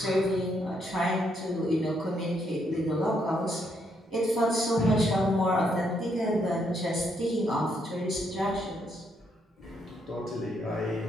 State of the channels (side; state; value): both; normal; correlation 0.75